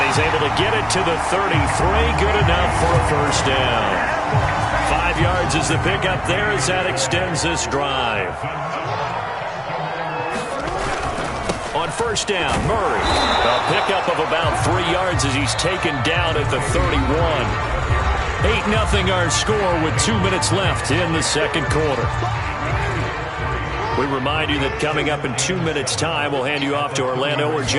he's able to get it to the 33. Good enough for a first down. 5 yards is the pickup there as that extends this drive. On first down, Murray. A pickup of about 3 yards as he's taken down at the 31. 8-0 our score with 2 minutes left in the second quarter. We remind you that coming up in 2 minutes' time, we'll hand you off to Orlando, where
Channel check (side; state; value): both; identical; correlation 1.00